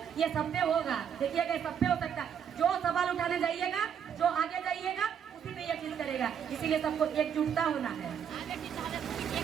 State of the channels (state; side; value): quieter; left; 8.1 dB